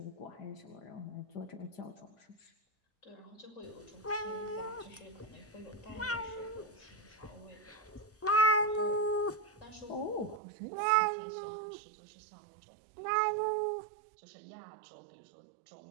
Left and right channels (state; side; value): drops out; left; at 10.4 s